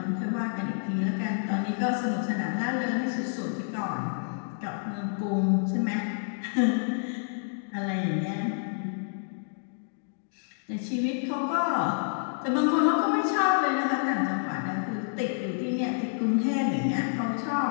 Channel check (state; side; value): silent; right; digital silence